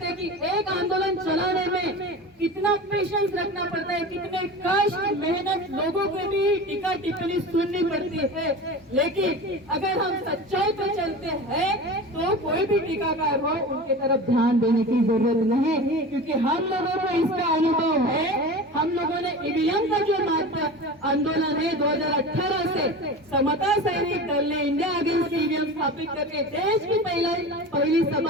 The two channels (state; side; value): normal; both; correlation 0.32